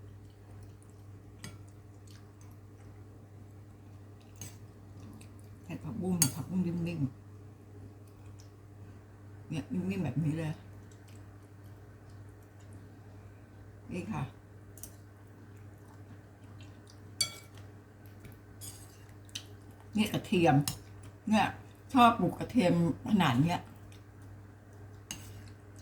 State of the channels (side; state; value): both; identical; correlation 1.00